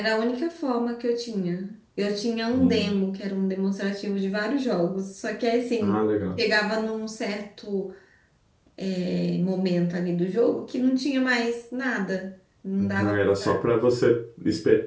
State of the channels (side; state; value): both; identical; correlation 1.00